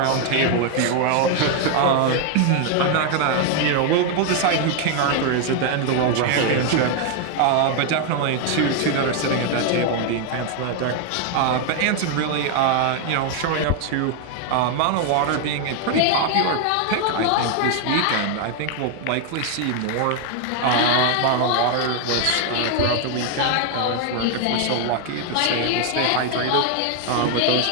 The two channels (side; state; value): both; different; correlation 0.01